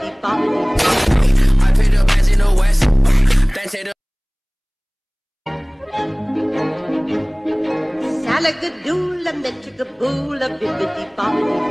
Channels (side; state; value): both; identical; correlation 1.00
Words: bop. I paid the bands in the west. Then say the Salagadool and the chickabool, a bibbidi bop.